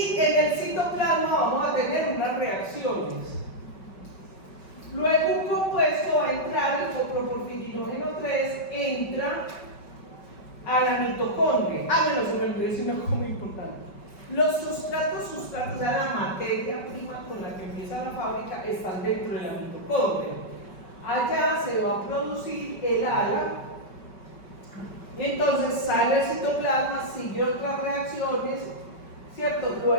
en el citoplasma vamos a tener unas reacciones. Luego un compuesto va a entrar, el coproporfirinógeno 3 entra a la mitocondria. Bueno, se me olvidó decir una cosa muy importante. Los sustratos, o sea, la materia prima con la que empieza la fábrica, están dentro de la mitocondria. Allá se va a producir el ala, y entonces sale el citoplasma, sigue otras reacciones, ¿cierto?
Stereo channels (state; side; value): late; right; 5.2 ms